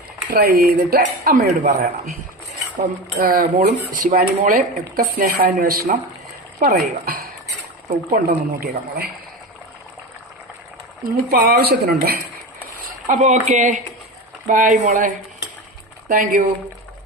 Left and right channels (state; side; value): normal; both; correlation 0.25